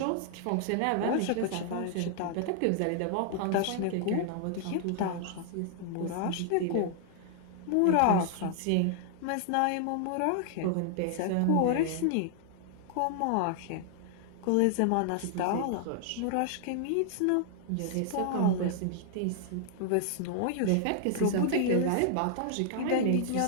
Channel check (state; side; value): different; both; correlation -0.01